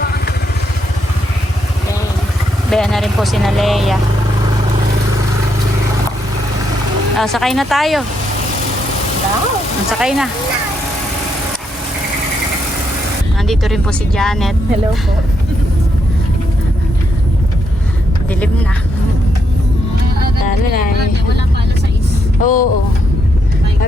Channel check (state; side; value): normal; both; correlation 0.78